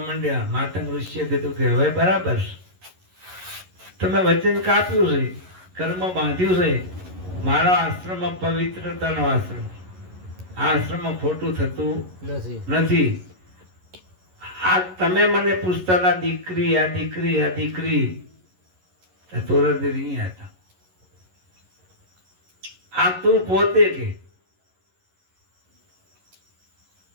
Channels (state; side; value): late; left; 11 ms